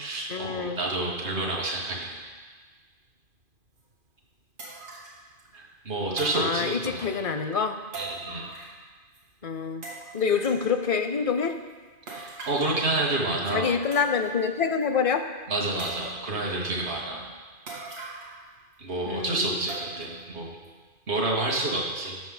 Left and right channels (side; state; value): left; late; 2.5 ms